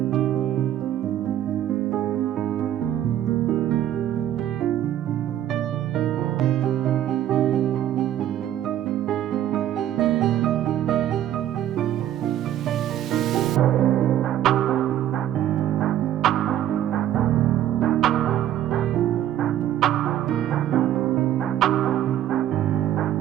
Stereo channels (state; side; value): quieter; left; 11.8 dB